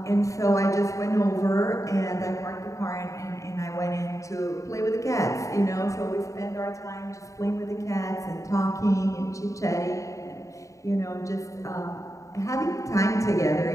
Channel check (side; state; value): right; late; 0.16 ms